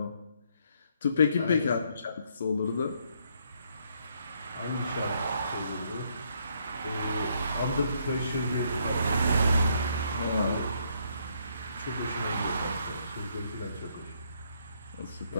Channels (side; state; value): both; inverted; correlation -0.71